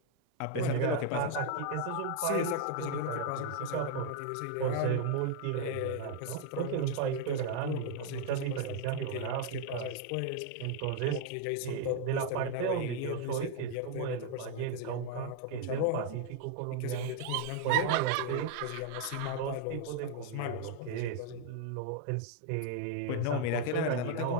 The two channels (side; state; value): both; different; correlation 0.00